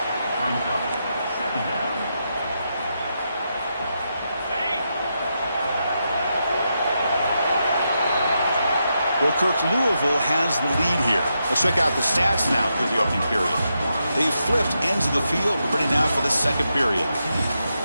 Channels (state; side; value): inverted; both; correlation -0.84